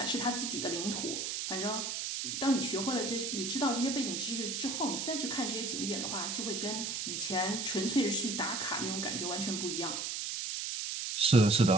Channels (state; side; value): noise; right; hiss, 3 dB below the sound